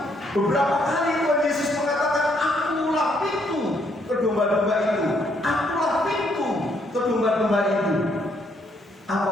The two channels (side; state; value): both; normal; correlation 0.71